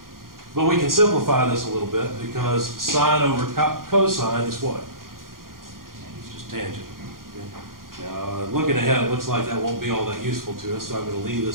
But we can simplify this a little bit because sine over cosine is what? It's just tangent. Okay. Now, looking ahead, it looks like that won't be all that useful to us, so I'm going to leave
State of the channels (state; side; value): late; left; 0.91 ms